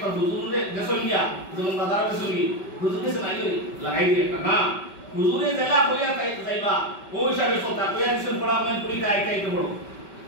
হুজুরে দেশন গিয়া যেমন বাজার দেশন গিয়ে হুজুরে সে নাই লাগাই দিয়ে না হুজুরে জেলা হইয়া যাইবা ওই হিসাবে সতা কইয়া দিছেন পড়া মানে পড়িতে আইতে পড়ো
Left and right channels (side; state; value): right; late; 5.2 ms